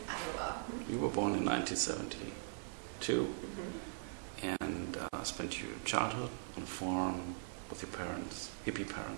Iowa. You were born in 1972 and spent your childhood on a farm with your parents, hippie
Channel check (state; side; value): silent; left; 50 dB below the other